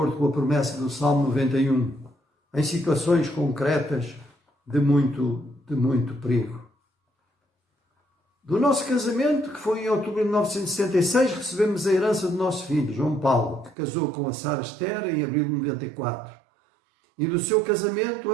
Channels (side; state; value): left; drops out; at 13.8 s